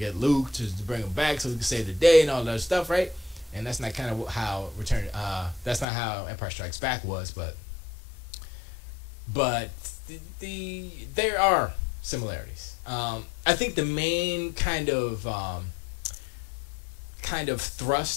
Luke to bring him back so we could save the day and all that stuff, right? And that's not kind of how that's not how Empire Strikes Back was, but there are similarities. I think the main kind of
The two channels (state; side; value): drops out; right; at 5.9 s